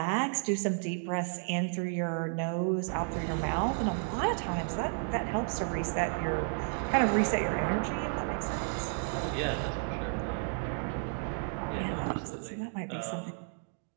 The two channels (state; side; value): silent; left; 56 dB below the other